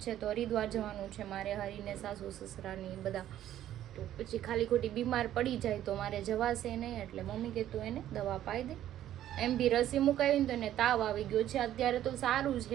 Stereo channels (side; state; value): left; quieter; 12.1 dB